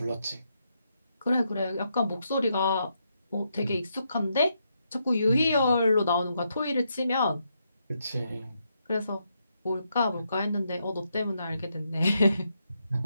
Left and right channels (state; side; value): inverted; both; correlation -0.80